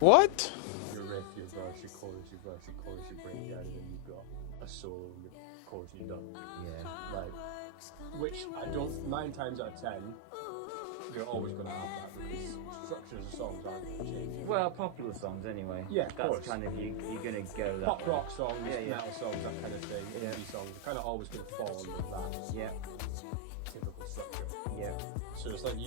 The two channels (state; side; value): different; both; correlation 0.00